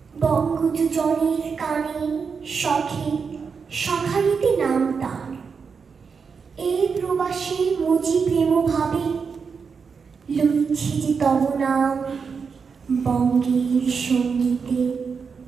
বঙ্গজনের কানে শখে সখারিতে নাম তার, এই প্রবাসে মজি প্রেম ভাবে, লইছি যে তব নাম বঙ্গের সঙ্গীতে।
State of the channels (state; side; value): quieter; left; 5.7 dB